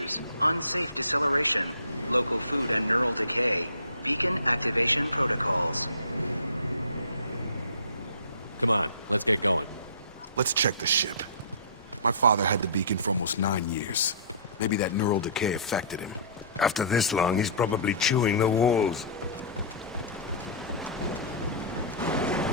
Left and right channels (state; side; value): inverted; both; correlation -0.40